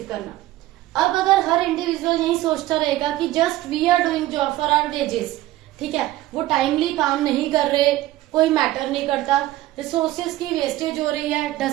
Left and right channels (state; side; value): quieter; left; 16.1 dB